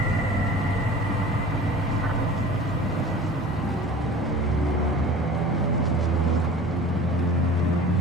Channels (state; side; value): normal; both; correlation 0.40